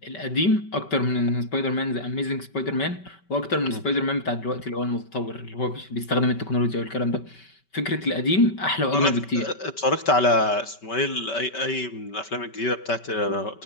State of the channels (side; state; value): right; late; 5.2 ms